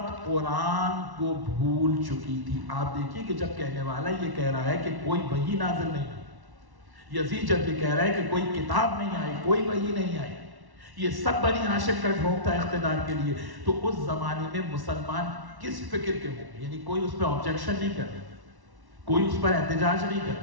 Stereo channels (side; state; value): left; late; 1.1 ms